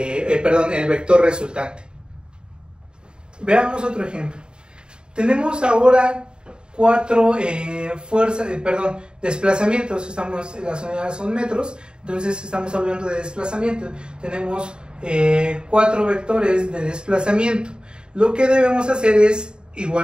vector resultante. Veamos otro ejemplo. Tenemos ahora 4 desplazamientos. Las unidades son metros, entonces estamos hablando de desplazamiento. Tenemos 4 vectores de desplazamiento. Lo que debemos hacer es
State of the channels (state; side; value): late; left; 0.050 ms